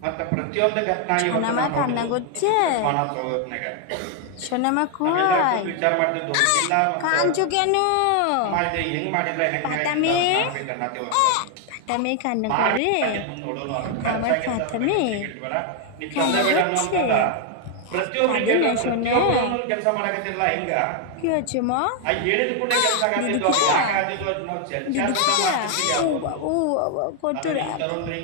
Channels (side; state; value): both; different; correlation 0.00